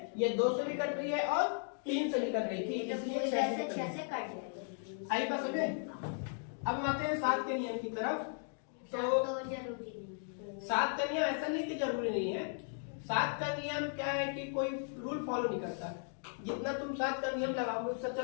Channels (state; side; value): silent; right; 54 dB below the other